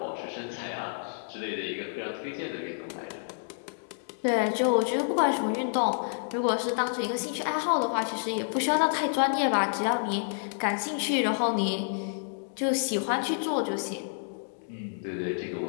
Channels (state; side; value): silent; right; digital silence